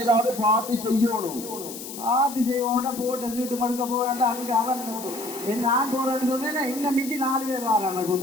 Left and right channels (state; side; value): noise; left; hiss, 11 dB below the sound